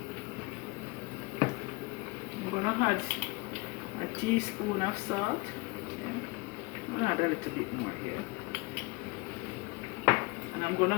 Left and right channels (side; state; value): right; quieter; 25.5 dB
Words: I'm gonna add a teaspoon of salt. Yeah. I'm gonna add a little bit more here. And I'm gonna